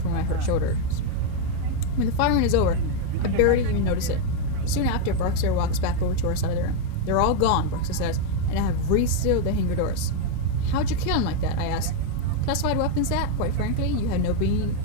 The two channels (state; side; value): different; both; correlation 0.01